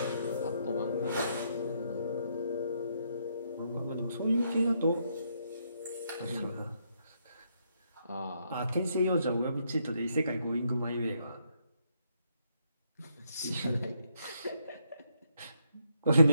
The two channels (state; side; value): inverted; both; correlation -0.76